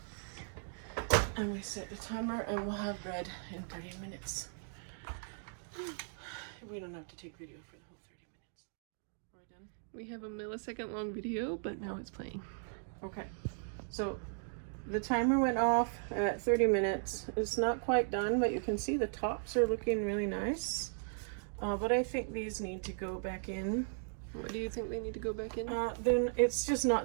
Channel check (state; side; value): silent; left; digital silence